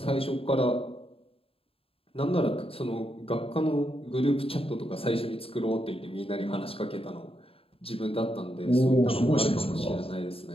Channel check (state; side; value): late; right; 0.27 ms